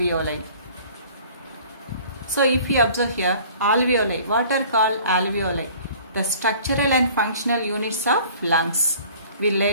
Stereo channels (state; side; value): inverted; both; correlation -0.50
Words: So if you observe here, alveoli, what are called alveoli? The structural and functional units of lungs. We will